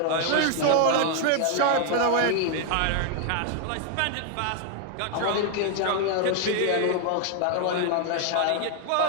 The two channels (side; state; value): both; different; correlation 0.00